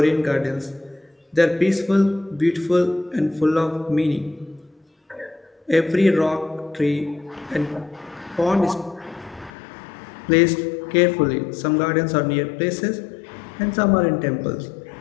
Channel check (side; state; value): right; drops out; at 9.5 s